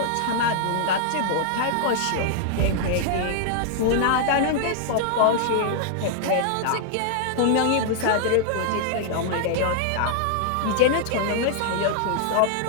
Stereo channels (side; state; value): both; different; correlation -0.01